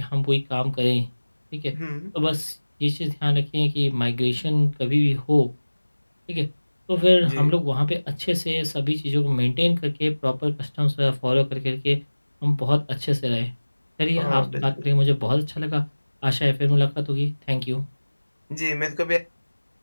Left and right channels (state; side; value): inverted; both; correlation -1.00